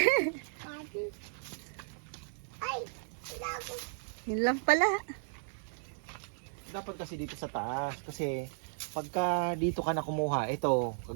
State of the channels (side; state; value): left; silent; digital silence